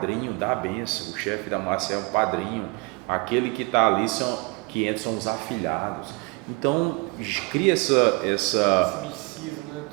da bênção. O chefe da máfia é um padrinho, aquele que está ali, que entra são os afilhados. Então esse misticismo, né?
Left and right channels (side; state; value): left; quieter; 27.8 dB